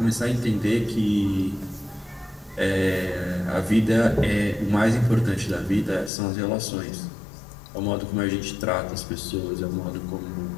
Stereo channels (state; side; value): drops out; right; at 6.1 s